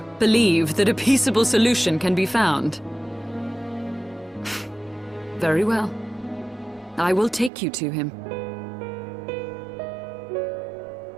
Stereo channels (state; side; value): drops out; left; at 7.5 s